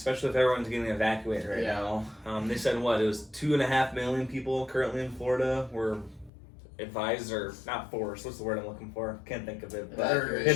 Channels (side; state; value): right; drops out; at 6.3 s